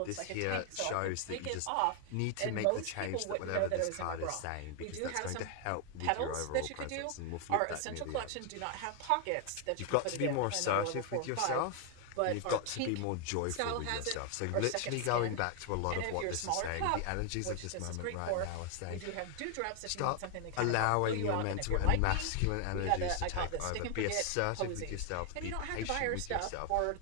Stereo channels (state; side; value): different; both; correlation 0.00